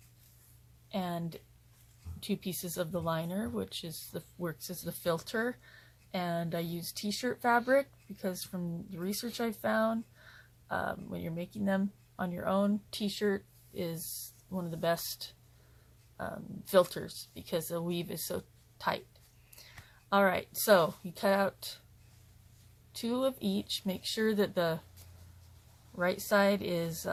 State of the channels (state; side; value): identical; both; correlation 1.00